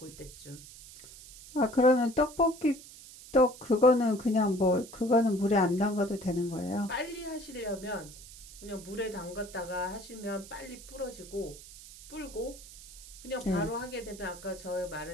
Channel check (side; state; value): right; noise; hiss, 17 dB below the sound